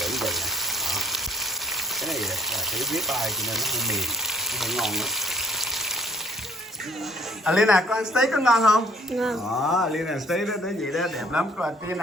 nè. Đó. Cái này là cái rib eye cho nên nó hơi mềm, nó hơi ngon lắm. Alina, con ăn steak có ngon không? Ngon. Đó, Alina steak đó tới vậy đó, đẹp lắm. Con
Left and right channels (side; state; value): both; normal; correlation 0.58